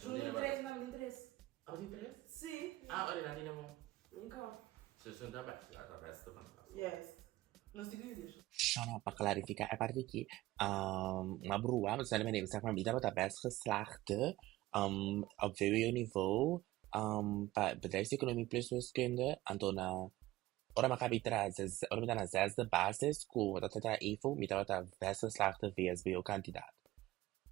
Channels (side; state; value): left; quieter; 17.2 dB